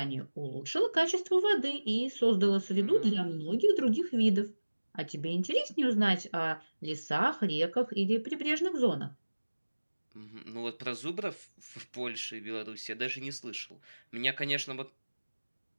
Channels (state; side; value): inverted; both; correlation -1.00